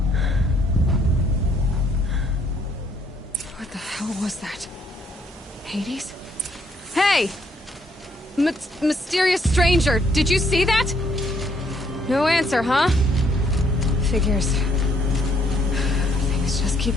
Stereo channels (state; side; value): normal; both; correlation 0.68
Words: What the hell was that? Hades? Hey! Mysterious stranger, did you see that? No answer, huh? Figures. Things just